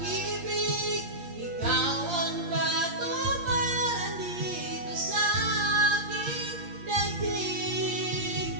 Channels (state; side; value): late; left; 8.6 ms